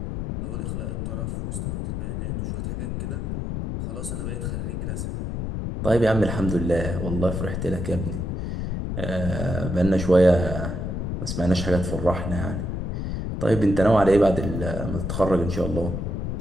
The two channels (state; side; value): noise; left; rumble, 3 dB below the sound